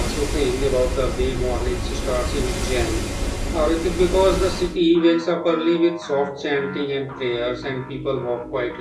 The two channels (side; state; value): both; identical; correlation 1.00